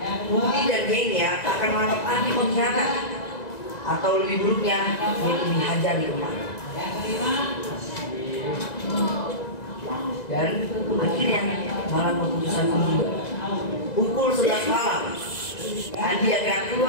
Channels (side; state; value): right; late; 2.0 ms